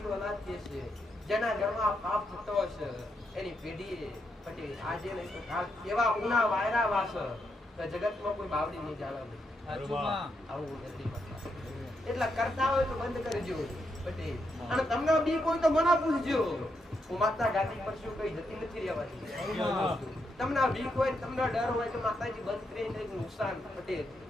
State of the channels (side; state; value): both; normal; correlation 0.81